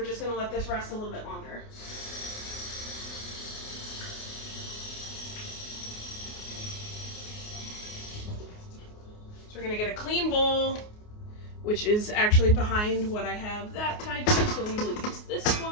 just gonna let this rest a little bit longer. So we're gonna get a clean bowl, which is actually behind what I have that tied to, so we will use this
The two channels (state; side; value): late; right; 29 ms